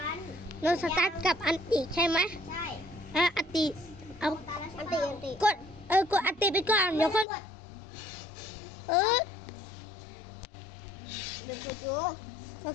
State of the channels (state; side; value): drops out; right; at 7.2 s